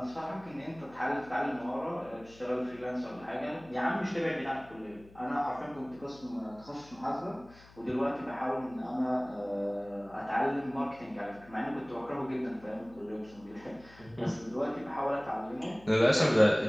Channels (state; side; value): noise; left; hum, 23 dB below the sound